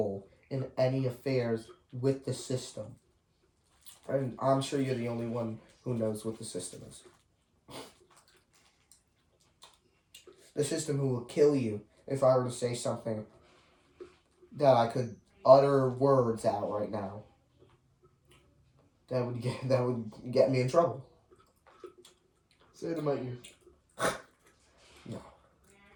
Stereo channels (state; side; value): identical; both; correlation 1.00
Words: in any affairs with the system. And I'm sure you're the only one who knows what the system is. The system who will kill you if I were to say something that I could utter words out right now. That would get me in trouble. Say it in my ear.